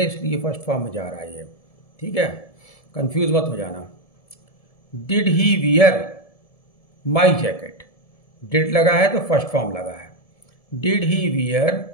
इसलिए फर्स्ट फॉर्म में जा रहा है ये। ठीक है, कंफ्यूज मत हो जाना। Did he wear my jacket, did लगा है तो फर्स्ट फॉर्म लगा है, did he wear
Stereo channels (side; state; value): right; late; 1.7 ms